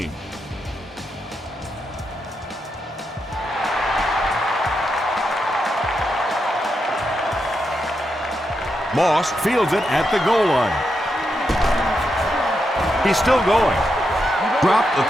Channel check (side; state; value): both; normal; correlation 0.84